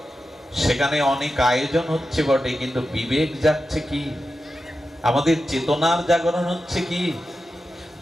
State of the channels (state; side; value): normal; both; correlation 0.91